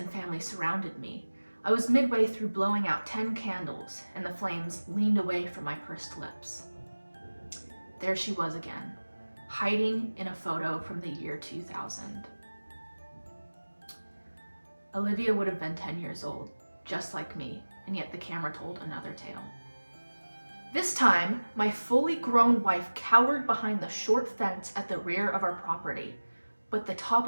family surrounded me. I was midway through blowing out 10 candles, and the flames leaned away from my pursed lips. There she was again, hiding in a photo from the year 2000. Olivia would have been 10 years old, just like me, and yet the camera told another tale. This time, my fully grown wife cowered behind the short fence at the rear of our property, but the top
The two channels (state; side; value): inverted; both; correlation -1.00